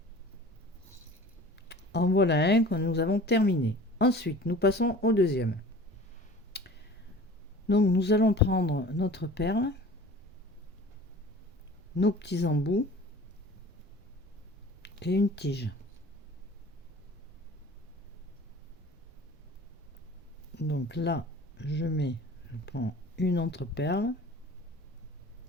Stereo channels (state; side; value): normal; both; correlation 0.43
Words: En voilà un que nous avons terminé. Ensuite, nous passons au deuxième. Donc, nous allons prendre notre perle. nos petits embouts et une tige. Donc là, je prends une entreperle,